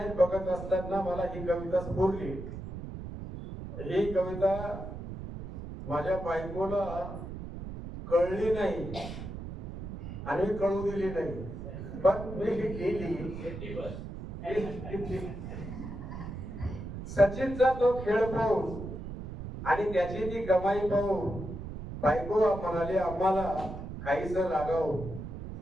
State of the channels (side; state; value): right; noise; rumble, 9 dB below the sound